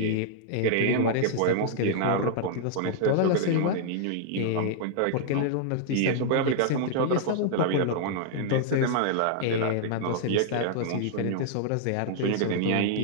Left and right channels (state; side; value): different; both; correlation -0.01